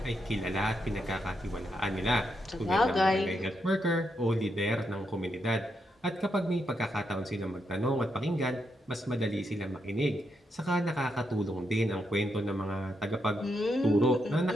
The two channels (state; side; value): normal; both; correlation 0.81